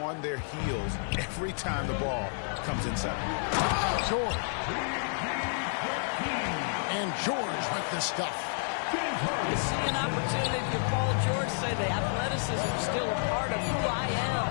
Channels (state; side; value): silent; right; 55 dB below the other